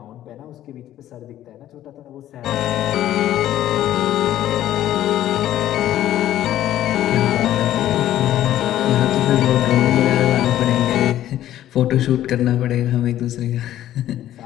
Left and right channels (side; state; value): right; quieter; 12.7 dB